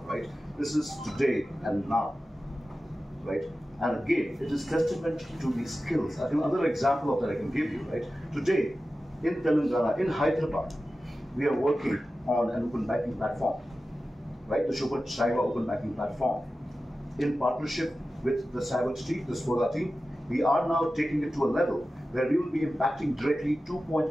right? This is today and now, right? And again, it is testament to the skills. I think another example of that I can give you, right? Today, in Telangana, in Hyderabad, we are working on an open banking platform, right? The Shiva Open Banking Platform. In partnership with the Savage team, the Spoda team, we are now taking it to a level where we will be impacting directly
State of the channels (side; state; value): both; normal; correlation 0.94